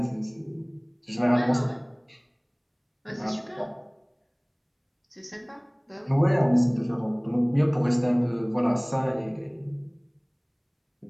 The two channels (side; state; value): both; identical; correlation 1.00